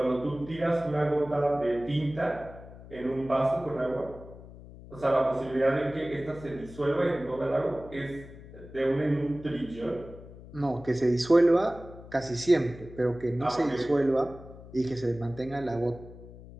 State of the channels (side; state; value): left; noise; hum, 17 dB below the sound